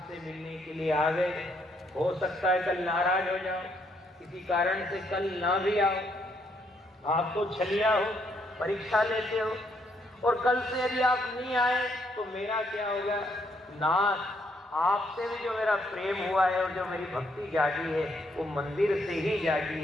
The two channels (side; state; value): both; normal; correlation 0.73